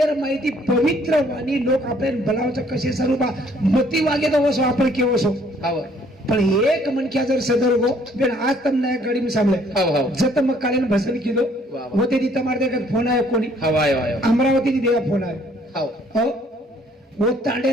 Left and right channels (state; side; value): normal; both; correlation 0.62